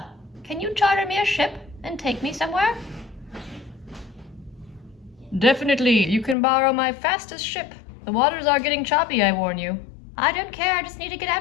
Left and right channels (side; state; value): right; drops out; at 6.4 s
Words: Can you charter me a ship and take me somewhere? Definitely. You can borrow my fastest ship. The waters are getting choppy, I warn you. I don't care. I just need to get